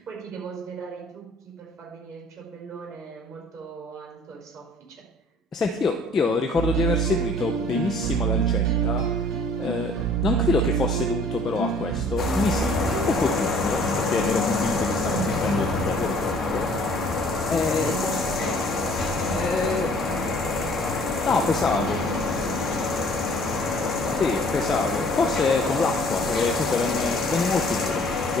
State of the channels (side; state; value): both; normal; correlation 0.55